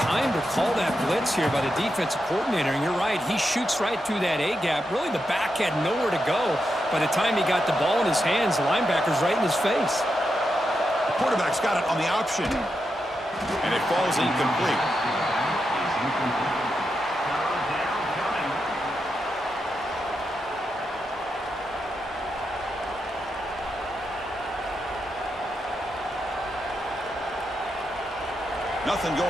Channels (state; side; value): normal; both; correlation 0.86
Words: to call that blitz here by the defensive coordinator. And you're right, he shoots right through that A-gap. Really, the back had nowhere to go. By the time he got the ball in his hands, the linebacker's right in his face. The quarterback's got it on the option. And it falls incomplete. Nothing